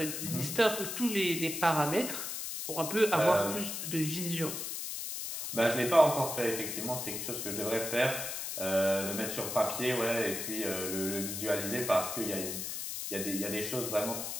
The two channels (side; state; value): left; noise; hiss, 5 dB below the sound